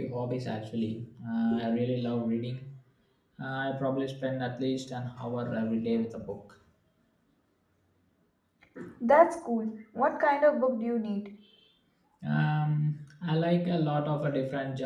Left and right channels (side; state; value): both; identical; correlation 1.00